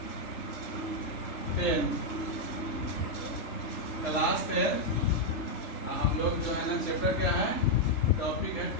10 हम लोग जो है ना, चैप्टर क्या है, टॉपिक है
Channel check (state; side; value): late; right; 3.4 ms